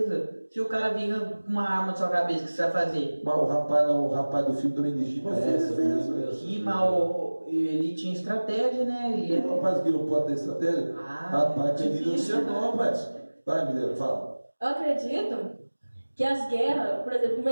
Se o cara vinha com uma arma na sua cabeça, o que você vai fazer? Mas o rapaz do filme também legítimo É, sobre isso mesmo. E mal, ele tinha estratégia, né? Ele O rapaz que não pode ter estratégia? Ah, Rapaz, querido, não difícil, sei né? não, rapaz. Vai, Mineiro, fala. Eu acredito que as guerras, por exemplo, no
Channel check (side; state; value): both; inverted; correlation -1.00